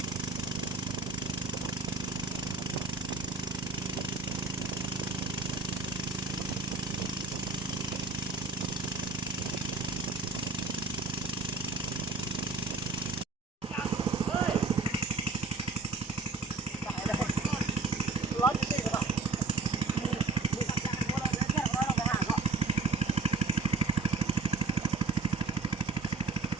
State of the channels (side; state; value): left; quieter; 4.4 dB